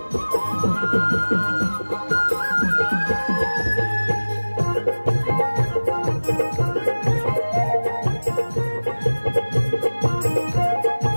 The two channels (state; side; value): inverted; both; correlation -1.00